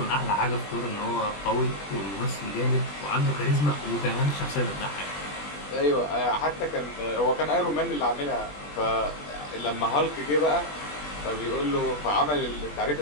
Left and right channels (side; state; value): right; late; 20 ms